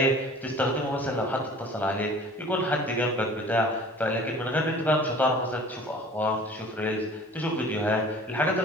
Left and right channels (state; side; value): normal; both; correlation 0.46